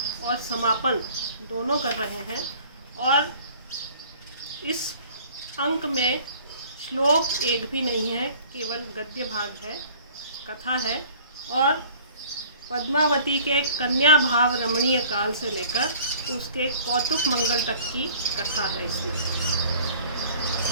समापन दोनों कर रहे हैं और इस अंक में श्लोक एक भी नहीं है, केवल गद्य भाग है, कथा है और पद्मावती के कन्या भाव रमणीय काल से लेकर उसके कौतुक मंगल तक की कथा है।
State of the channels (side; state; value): both; inverted; correlation -0.51